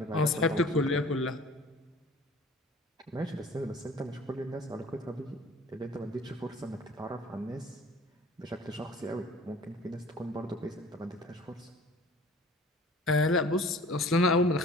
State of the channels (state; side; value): normal; both; correlation 0.47